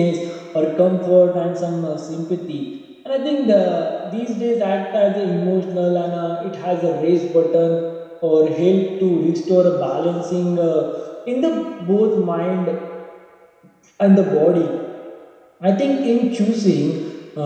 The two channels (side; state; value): both; identical; correlation 1.00